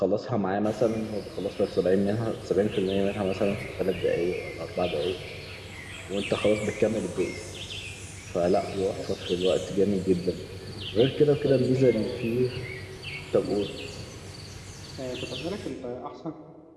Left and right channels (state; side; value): identical; both; correlation 1.00